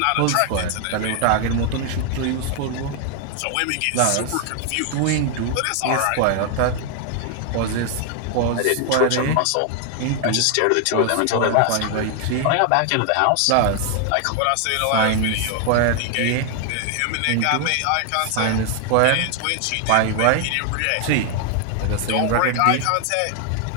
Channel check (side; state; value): both; different; correlation 0.00